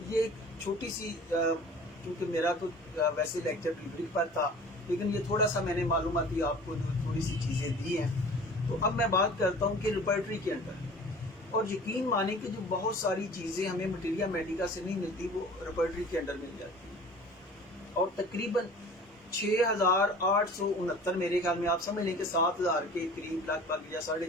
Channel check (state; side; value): normal; both; correlation 0.44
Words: یہ ایک چھوٹی سی، کیونکہ میرا تو ویسے لیکچر ریبرک پر تھا لیکن یہ تھوڑا سا میں نے معلوماتی آپ کو تھوڑی سی چیزیں دی ہیں. تو اب میں بات کرتا ہوں کہ ریپرٹری کے اندر، اور یقین مانیں کہ جو بہت ساری چیزیں ہمیں مٹیریا میڈیکا سے نہیں ملتی وہ ریپرٹری کے اندر مل جاتی ہیں. اور تقریباً 6,869 میرے خیال میں آپ سمجھ لیں کہ 7,000 کے قریب، لگ بھگ یا